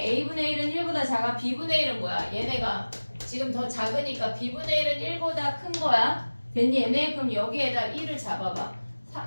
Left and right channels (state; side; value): inverted; both; correlation -1.00